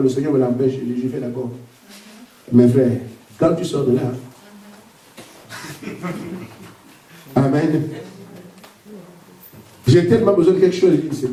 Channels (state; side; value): identical; both; correlation 1.00